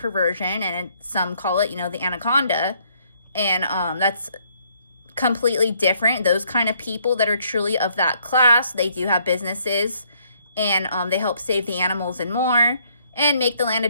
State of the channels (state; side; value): inverted; both; correlation -0.68